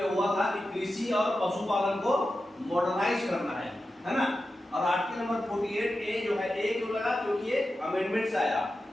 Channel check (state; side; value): normal; both; correlation 0.92